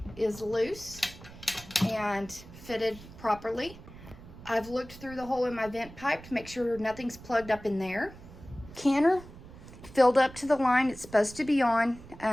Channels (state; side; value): noise; right; rumble, 17 dB below the sound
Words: loose and fitted properly. I've looked through the hole in my vent pipe to make sure nothing's plugged up in there. Canner filled up to the line it's supposed to be on